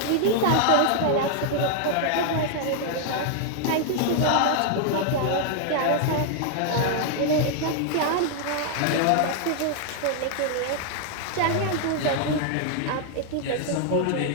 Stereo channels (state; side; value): different; both; correlation 0.00